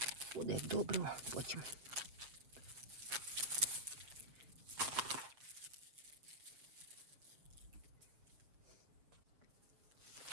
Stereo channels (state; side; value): late; left; 7.2 ms